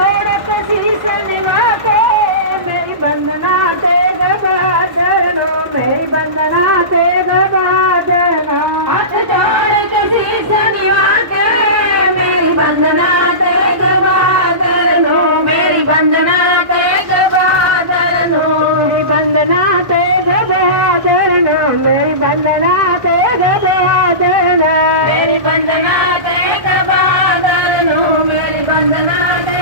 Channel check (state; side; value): late; left; 1.1 ms